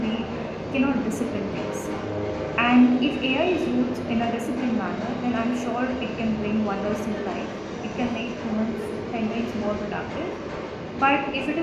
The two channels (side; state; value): both; identical; correlation 1.00